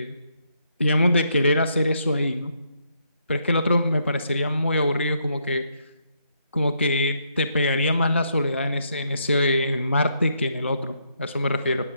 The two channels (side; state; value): both; inverted; correlation -0.75